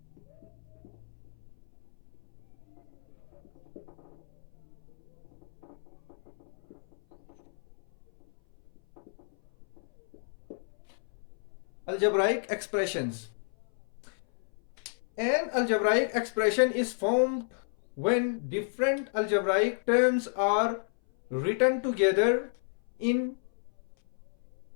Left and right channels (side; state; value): right; silent; 56 dB below the other